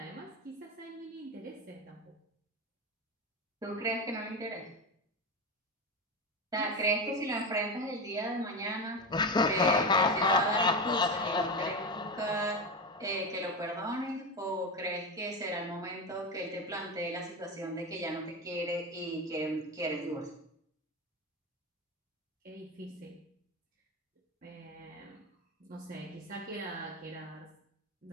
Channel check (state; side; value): normal; both; correlation 0.18